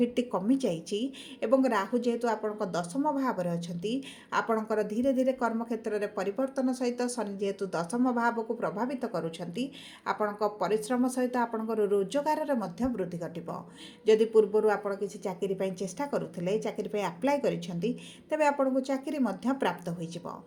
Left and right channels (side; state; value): both; identical; correlation 1.00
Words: कमी जाइछि एवं राहु जेहेतु आपणक दशम भाव अछंती आपणकर धीरे धीरे कर्म क्षेत्र में परिवर्तन सहित शनि जेहेतु दशम भाव को प्रभावित करुछंती आपणक परिश्रम सहित आपणकर रोजगार रे मध्य वृद्धि घटिबो। जदि पूर्वरु आपण किसी चाकरी पई चेष्टा करुथिले चाकरी पई अप्लाई करिसेंती तेबे आपणको चाकरी मध्य प्राप्त होई जिवो।